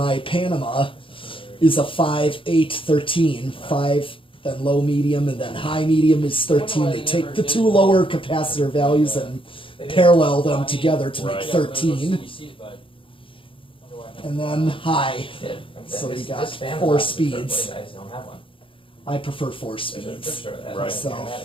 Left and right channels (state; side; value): late; right; 0.25 ms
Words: Panama is a 5, 8, 13. 5, then low medium, and then high medium is 13. They take the 2 lower capacitor values and parallel them together to make 13. And then high. So you got 4 speeds. I prefer 4 speeds. Right. So,